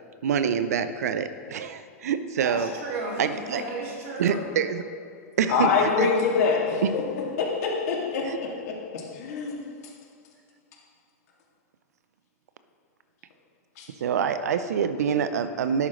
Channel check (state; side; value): normal; both; correlation -0.17